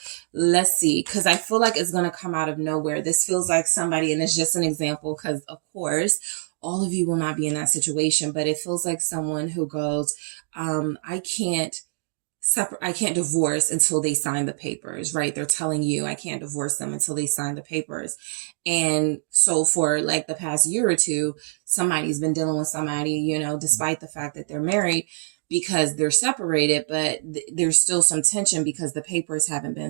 Let's see, because I feel like it's going to come out of nowhere. This feels like somebody, and it's just an example because of course, all of you will not be in that situation, but it feels like someone who goes, I can't divorce until they sign the papers, right? They're telling you I can't divorce them until they sign the papers. And so for like the past year or two, somebody's been dealing with somebody, despite the fact that they're married, because they're separated, but there's still some tension because the papers haven't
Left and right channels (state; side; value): silent; left; digital silence